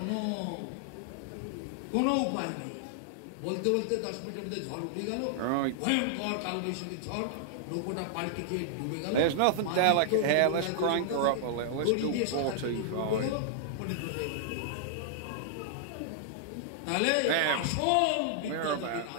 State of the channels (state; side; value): different; both; correlation -0.01